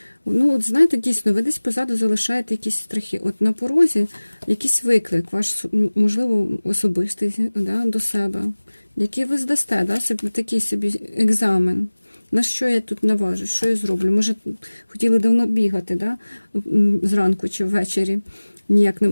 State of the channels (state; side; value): inverted; both; correlation -1.00